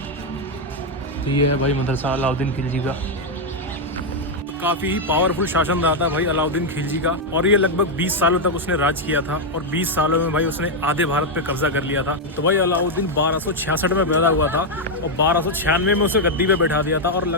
तो ये है भाई मदरसा अलाउद्दीन खिलजी का। काफ़ी ही पावरफुल शासन रहा था भाई अलाउद्दीन खिलजी का। और ये लगभग 20 सालों तक उसने राज किया था और 20 सालों में भाई उसने आधे भारत पे कब्जा कर लिया था। तो भाई अलाउद्दीन 1266 में पैदा हुआ था और 1296 में उसे गद्दी पे बैठा दिया था और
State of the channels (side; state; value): both; normal; correlation 0.01